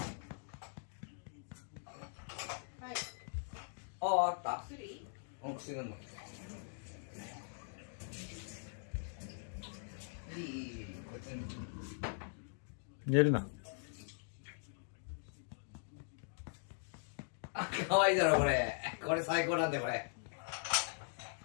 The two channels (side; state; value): right; silent; digital silence